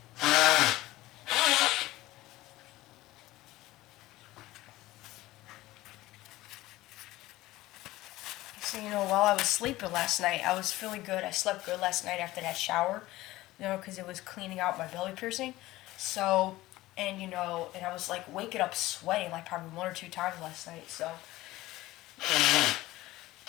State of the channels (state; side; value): quieter; right; 17.5 dB